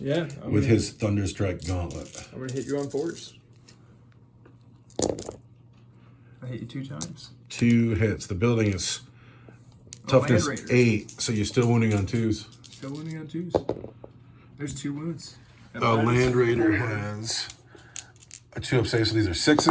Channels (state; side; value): identical; both; correlation 1.00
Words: with his Thunderstrike Gauntlet. I'm going to hit you on 4s. I hit you 2 times. 2 hits. The building is toughness 8, so you're still wounding on 2s. Still wounding on 2s. There's 2 wounds. The Land Raider has a 2 up save, so these are